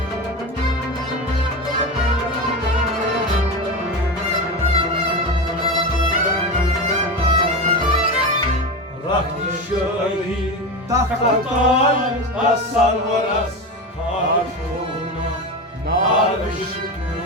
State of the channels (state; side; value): normal; both; correlation 0.21